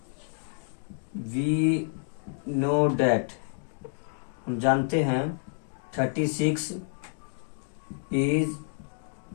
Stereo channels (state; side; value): silent; right; digital silence